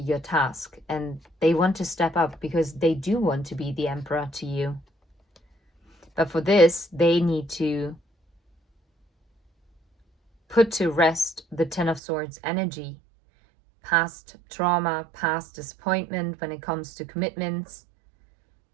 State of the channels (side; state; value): left; drops out; at 12.0 s